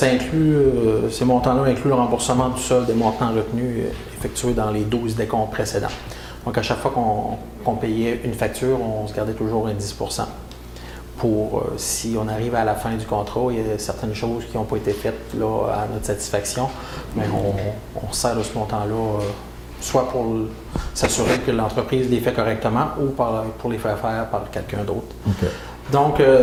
montants-là incluent le remboursement du solde des montants retenus effectués dans les 12 décomptes précédents. Donc, à chaque fois qu'on payait une facture, on se gardait toujours un 10 % pour, si on arrive à la fin du contrat, il y a certaines choses qui n'ont pas été faites là, à notre satisfaction, mais on sert de ce montant-là, soit pour s'assurer que l'entreprise les fait correctement ou pour les faire faire par quelqu'un d'autre. Okay. Donc,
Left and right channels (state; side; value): identical; both; correlation 1.00